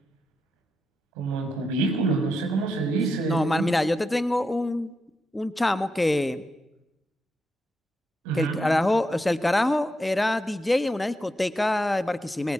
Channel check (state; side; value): normal; both; correlation 0.84